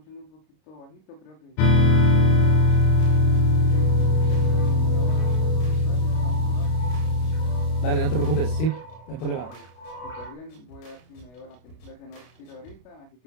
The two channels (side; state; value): right; late; 32 ms